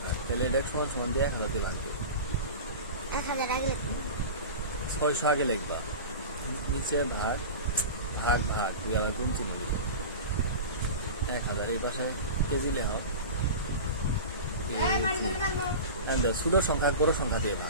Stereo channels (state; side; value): inverted; both; correlation -0.30